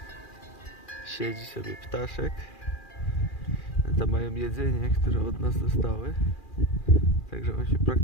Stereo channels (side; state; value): right; late; 2.4 ms